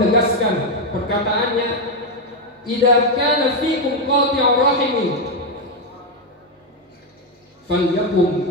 perkataannya, "Idza kana fikum qati'ur rahimin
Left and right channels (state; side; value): normal; both; correlation 0.05